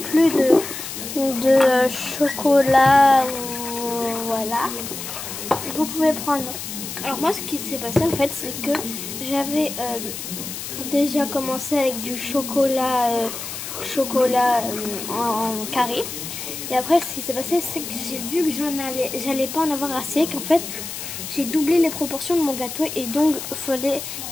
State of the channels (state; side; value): noise; left; hiss, 8 dB below the sound